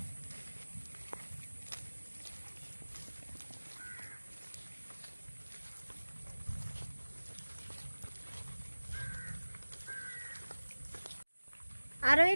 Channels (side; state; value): both; inverted; correlation -1.00